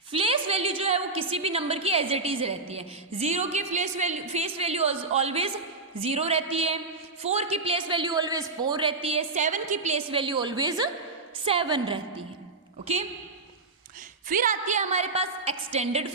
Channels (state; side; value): quieter; left; 3.7 dB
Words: फेस वैल्यू जो है वो किसी भी नंबर की एज इट इज रहती है. 0 की फेस वैल्यू ऑलवेज 0 रहती है, 4 की प्लेस वैल्यू ऑलवेज 4 रहती है, 7 की प्लेस वैल्यू ऑलवेज 7 रहती है. ओके, फिर आती है हमारे पास extended